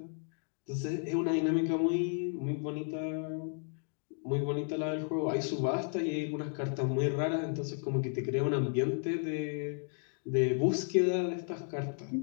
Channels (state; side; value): silent; right; 56 dB below the other